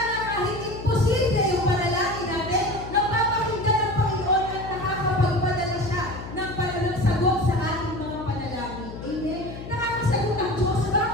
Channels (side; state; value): left; noise; hum, 11 dB below the sound